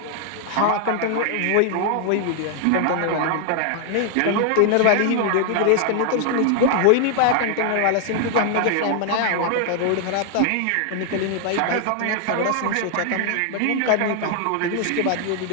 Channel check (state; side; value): different; both; correlation 0.00